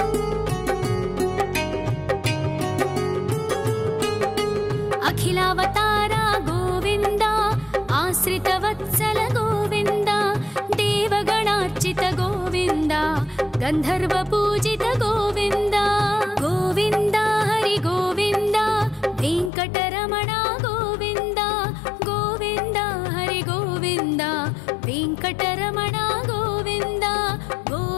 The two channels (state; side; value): drops out; right; at 19.5 s